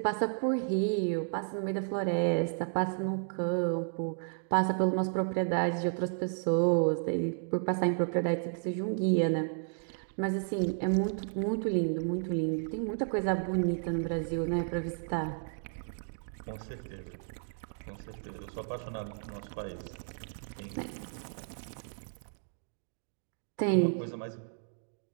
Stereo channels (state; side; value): silent; left; digital silence